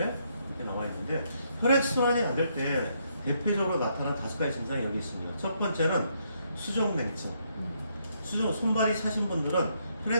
나와 있는데 혈액 순환이 안 될 때 대표적으로 나타난 5가지 증상이 여기 있습니다. 첫 번째는 수족냉증. 손발이 차신 분들은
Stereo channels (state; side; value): inverted; both; correlation -0.74